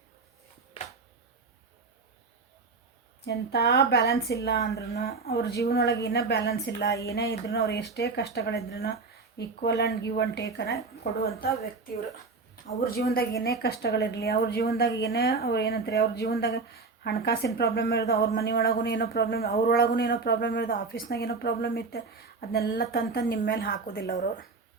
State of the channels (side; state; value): left; quieter; 4.2 dB